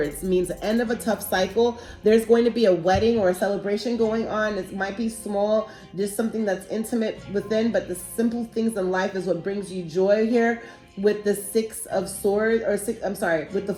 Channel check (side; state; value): both; identical; correlation 1.00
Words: It means the end of a tough cycle. There's going to be a wedding or a celebration going on. It might be small, just something that's intimate within, but the simple things in life is what brings you joy here. With the Six of Swords, with the